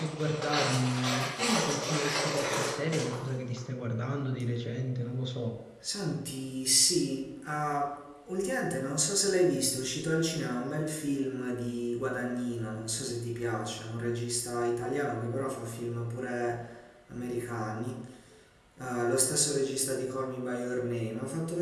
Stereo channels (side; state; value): both; identical; correlation 1.00